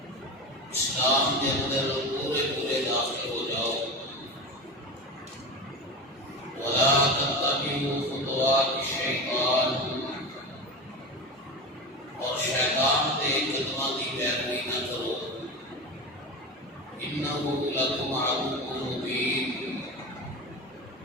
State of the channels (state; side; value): normal; both; correlation 0.25